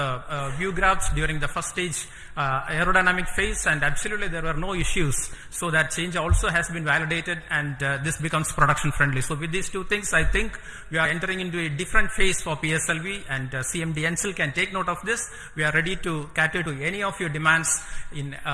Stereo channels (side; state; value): both; identical; correlation 1.00